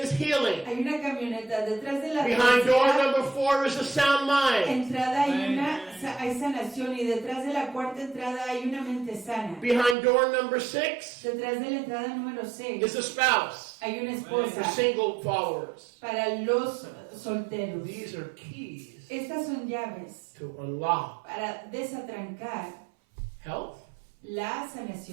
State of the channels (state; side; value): drops out; left; at 10.0 s